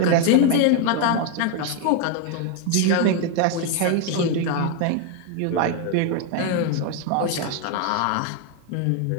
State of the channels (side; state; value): both; different; correlation 0.01